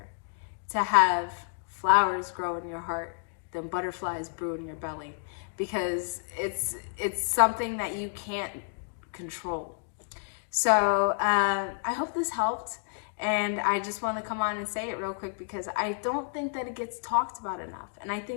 to have flowers grow in your heart than butterflies brew in your belly, because it's something that you can't control. So I hope this helped, and I just want to come on and say it real quick because I don't think that it gets talked about enough, and I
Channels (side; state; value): right; silent; digital silence